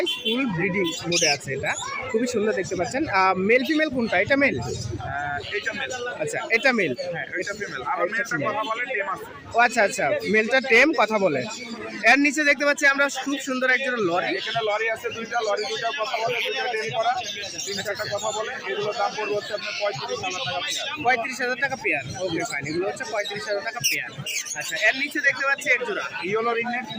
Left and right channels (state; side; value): identical; both; correlation 1.00